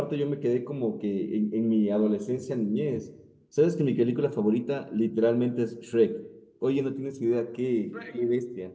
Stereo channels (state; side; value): identical; both; correlation 1.00